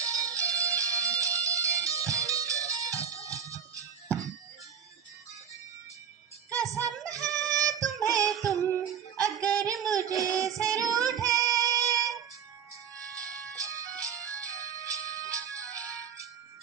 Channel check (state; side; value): quieter; left; 7.7 dB